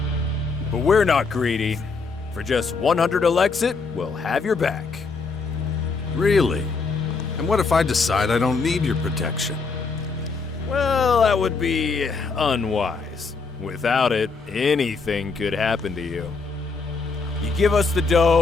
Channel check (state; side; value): quieter; right; 4.4 dB